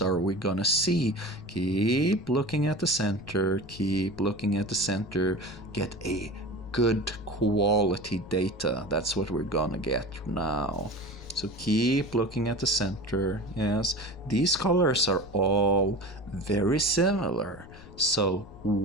we gonna see? Keep looking at the center, keep looking at the center. Get a good quality data. That's what we're gonna get now. So keep looking at the center. Yes, these colors are all very similar. So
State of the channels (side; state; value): left; noise; rumble, 18 dB below the sound